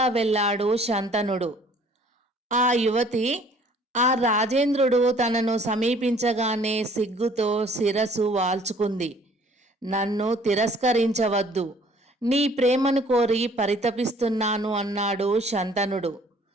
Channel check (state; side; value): normal; both; correlation 0.56